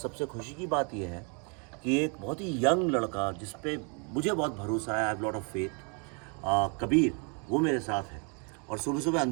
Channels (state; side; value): quieter; left; 35.2 dB